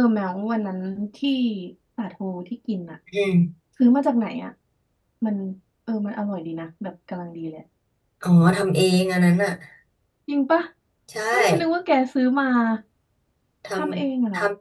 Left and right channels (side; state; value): both; identical; correlation 1.00